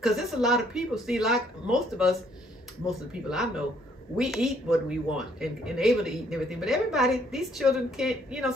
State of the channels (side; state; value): both; normal; correlation 0.65